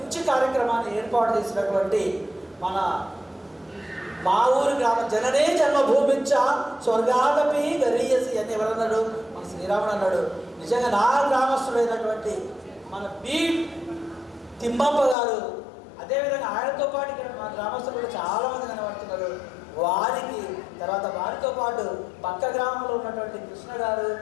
కార్యక్రమాన్ని ఏర్పాటు చేసినటువంటి మా ఊరి గ్రామ జననే జన్మభూమించ స్వర్గాదపి గరీయసి అని ఎవరన్నాడు? మన శ్రీరాముడు అన్నాడు. నిజంగా నా గ్రామస్తుడైనటువంటి మన బి తిమ్మప్ప గారు, అదేవిధంగా ఆయనతో పాటు ఇక్కడ మా గ్రామస్తులు కూడా చాలామంది కనబడుతున్నారు. వారితో పాటు పక్క గ్రామంలో ఉన్నటువంటి కృష్ణ గారు,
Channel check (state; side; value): drops out; right; at 15.2 s